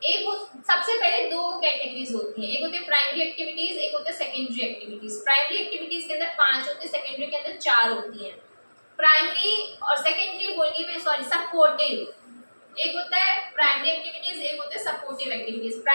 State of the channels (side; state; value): both; inverted; correlation -1.00